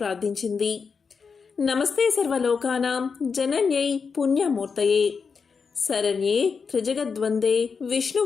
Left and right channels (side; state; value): right; quieter; 5.5 dB